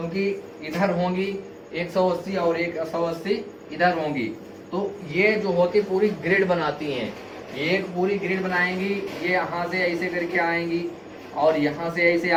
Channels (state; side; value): identical; both; correlation 1.00